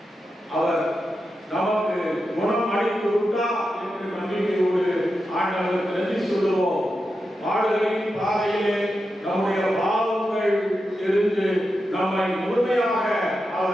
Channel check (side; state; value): both; normal; correlation 0.89